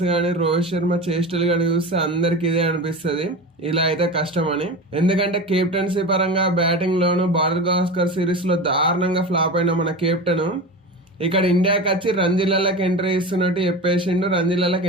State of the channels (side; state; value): both; normal; correlation 0.28